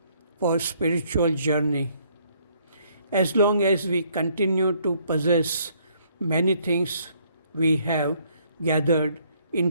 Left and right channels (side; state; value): both; inverted; correlation -0.66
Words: for spiritual journey. As long as we continue to possess many things we have gathered,